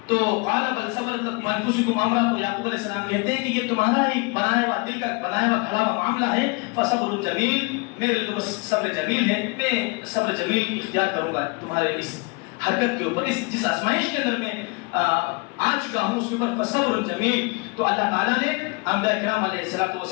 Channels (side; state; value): right; quieter; 28.8 dB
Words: تو قال بل صبرت انفسکم امرا, تو یعقوب علیہ السلام کہتے ہیں کہ یہ تمہارا ہی بنایا ہوا دل کا بنایا ہوا کھڑا ہوا معاملہ ہے. فصبر جمیل, میرے لیے تو بس صبر جمیل ہے, میں صبر جمیل اختیار کروں گا تمہارے اس حرکت کے اوپر, اس جس آزمائش کے اندر میں آ چکا ہوں اس کے اوپر. فصبر جمیل. تو اللہ تعالیٰ نے انبیاء کرام علیہ